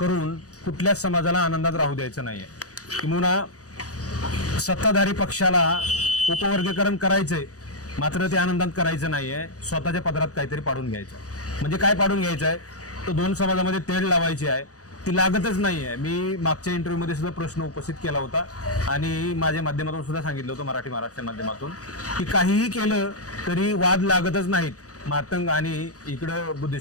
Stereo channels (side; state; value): right; late; 0.66 ms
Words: कुठल्याच समाजाला आनंदात राहू द्यायचं नाही आहे. किंवा सत्ताधारी पक्षाला उपवर्गीकरण करायचंय मात्र ते आनंदात करायचं नाहीये, स्वतःच्या पदरात काहीतरी पाडून घ्यायचं. म्हणजे काय पाडून घ्यायचं आहे, तर 2 समाजामध्ये तेढ लावायची आहे, ती लागतच नाहीये. मी मागच्या इंटरव्ह्यूमध्ये सुद्धा प्रश्न उपस्थित केला होता आणि माझ्या माध्यमातून सुद्धा सांगितलं होतं, मराठी महाराष्ट्र माध्यमातून, की काहीही केलं तरी वाद लागतच नाहीत मातंग आणि इकडं